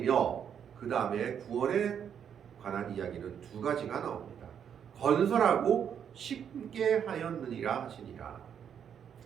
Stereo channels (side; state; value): left; quieter; 8.3 dB